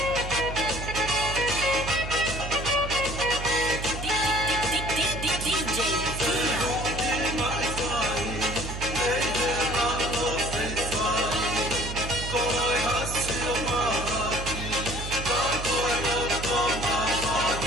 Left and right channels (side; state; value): right; noise; hum, 7 dB below the sound